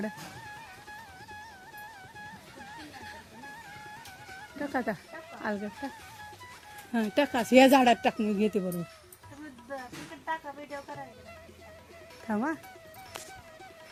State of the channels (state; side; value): identical; both; correlation 1.00